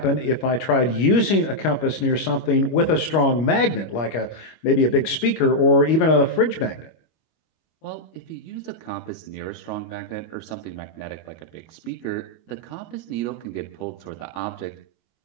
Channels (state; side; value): late; right; 25 ms